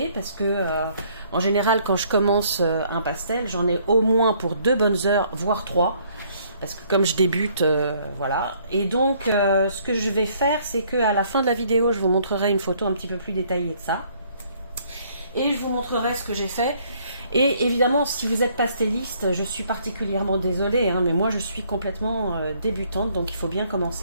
parce que en général, quand je commence un pastel, j'en ai au moins pour 2 bonnes heures, voire 3. Parce que comme je débute, voilà. Et donc, ce que je vais faire, c'est qu'à la fin de la vidéo, je vous montrerai une photo un petit peu plus détaillée de ça. Et je vous montrerai ce que j'ai fait. Et évidemment, si vous êtes pastelliste, je suis particulièrement désolée, mais moi je suis complètement débutante, donc il faut bien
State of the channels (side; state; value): both; inverted; correlation -0.64